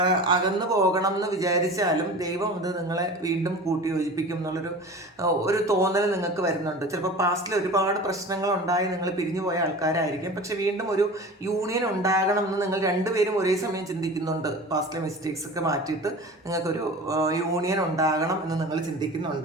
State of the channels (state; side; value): normal; both; correlation 0.36